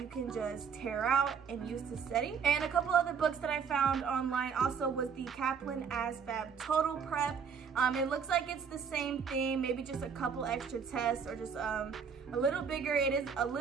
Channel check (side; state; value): left; quieter; 6.4 dB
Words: you can just tear out and use to study. And a couple other books that I found online also was the Kaplan ASVAB Total Prep. It looks like it's the same thing, maybe just a couple extra tests or just a little bigger. It is a